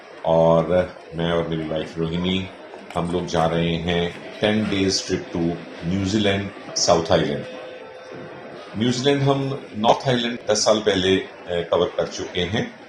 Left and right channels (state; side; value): identical; both; correlation 1.00